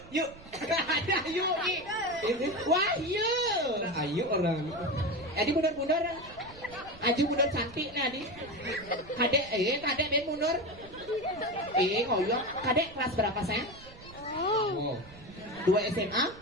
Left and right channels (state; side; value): noise; right; rumble, 20 dB below the sound